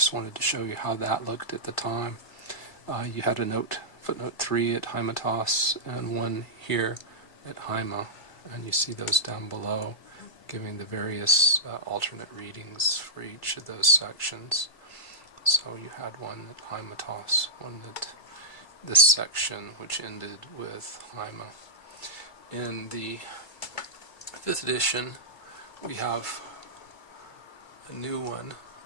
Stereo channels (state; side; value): late; right; 2.2 ms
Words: wanted to show you how that looked at the time. You had a note, footnote 3 at Hymetos, and one here at Hyma, and you see those down below, giving the various alternate readings for each of those sections. So you had one at Hymetos, one at this section, which ended with Hyma. In the 5th edition, we have a new one.